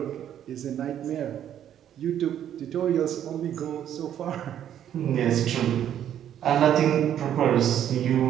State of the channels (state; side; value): quieter; left; 10.3 dB